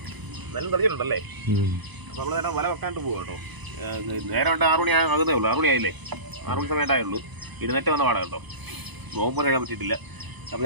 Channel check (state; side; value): late; left; 1.0 ms